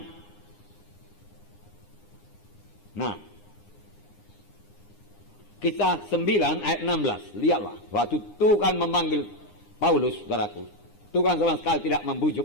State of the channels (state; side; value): late; right; 9.8 ms